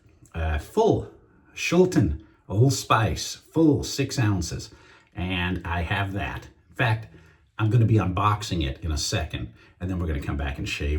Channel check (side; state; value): both; identical; correlation 1.00